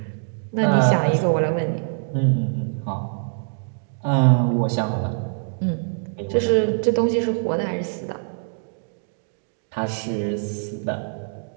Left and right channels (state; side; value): silent; left; digital silence